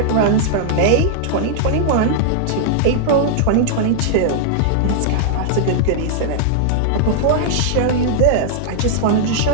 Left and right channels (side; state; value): both; different; correlation -0.01